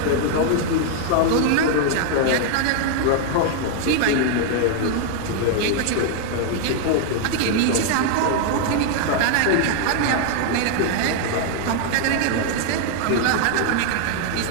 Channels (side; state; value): both; different; correlation 0.00